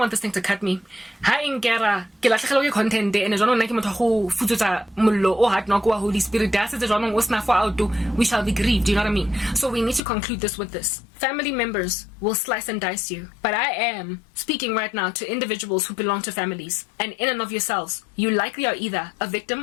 this thing to cut me. Ha inkera ke latlhegelwa ke content and jwanong nna ke motho go futsutsa mollo o hard knock wa Holy Spirit da se jwanong o sna for out we shall be grieved, do you know what I mean? So we need to conclude this with this. Family members will slice and dice you, but I am speaking right now to individuals who belong to families, and in and of yourselves, you likely are either a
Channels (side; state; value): right; drops out; at 10.0 s